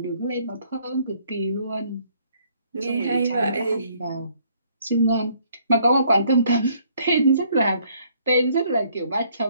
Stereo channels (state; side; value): inverted; both; correlation -0.65